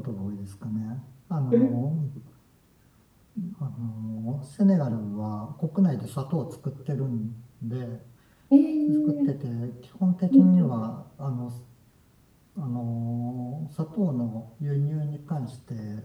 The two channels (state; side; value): identical; both; correlation 1.00